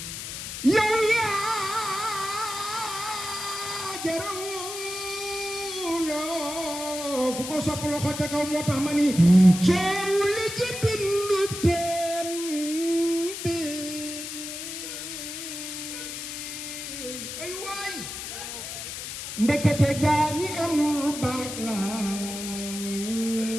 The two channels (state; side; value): noise; left; hiss, 7 dB below the sound